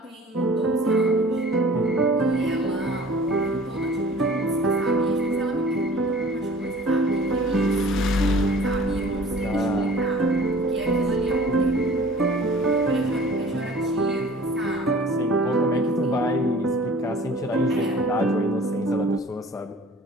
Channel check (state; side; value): normal; both; correlation 0.47